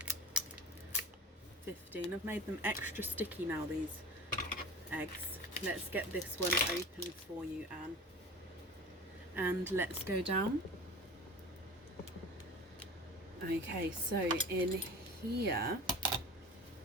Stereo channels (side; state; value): both; normal; correlation 0.36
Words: 15, I've made them extra sticky now, these eggs. Let's get this one open for you, Anne. And let's go down. Okay, so in here